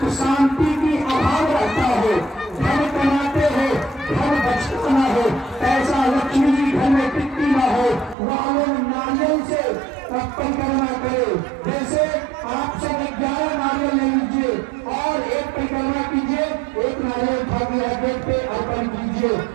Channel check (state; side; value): drops out; left; at 8.2 s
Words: शांति की अभाव रहता हो, धन कमाते हो, धन बचता न हो, पैसा लक्ष्मी जी घर में टिकती न हो, वह लोग नारियल से परिक्रमा करे। जैसे आप सब 11 नारियल ले लीजिए और एक परिक्रमा कीजिए, एक नारियल ठाकुर गेट पे अर्पण कीजिए,